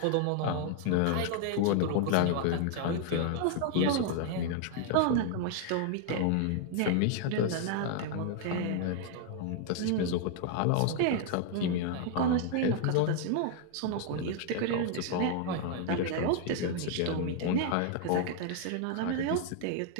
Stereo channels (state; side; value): different; both; correlation 0.00